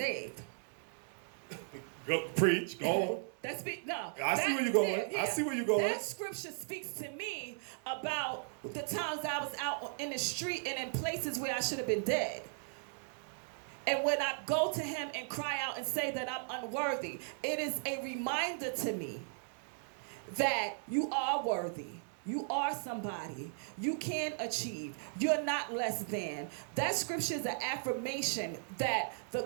Go preach. Go on. I see where you're going. I see where you're going. That scripture speaks to me about the times I was out in the street and in places where I should have been dead. And when I go to him and cry out and say that I'm unworthy, it is a reminder to me that you are worthy. You are somebody. You can achieve. You're not less than. That scripture is an affirmation that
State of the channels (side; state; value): left; silent; digital silence